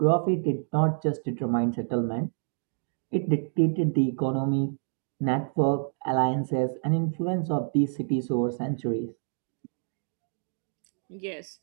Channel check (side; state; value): left; silent; digital silence